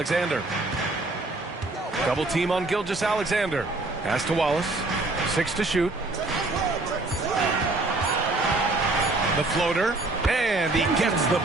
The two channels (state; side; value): quieter; left; 3.0 dB